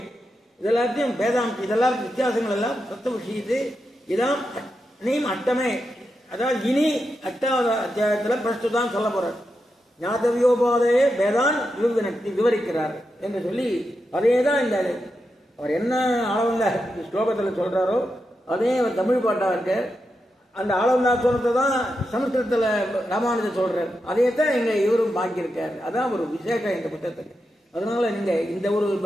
இதெல்லாத்தையும் வேதாம்ச, இதெல்லாம் வித்தியாசங்கள் எல்லாம் தத்துவ விஷயத்து. இதான் நீம் அட்டமே, அதாவது இனி 8வது அத்தியாயத்தில் பிரஸ்துதான் சொல்ல போறார். ஞாதவியோபாதேய வேதான் விவரிக்கிறார் என்று சொல்லி அதே தான் இந்த அவர் என்ன ஆளவந்த ஸ்லோகத்தில் சொல்றாரோ அதே அவர் தமிழ் பாட்டா இருக்க. அந்த ஆளவந்தா சொல்றதை தான் சமஸ்கிருதத்தில் ராமானுஜர் சொல்றார். அதே தான் இங்க இவரும் பாக்கியிருக்காரு. அதான் ஒரு விசேஷம் இந்த புத்தகத்துக்கு. அதனால நீங்க இந்த ஒரு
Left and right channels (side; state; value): both; normal; correlation 0.87